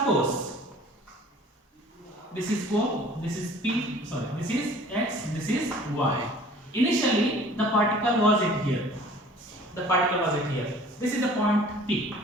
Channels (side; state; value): both; normal; correlation 0.49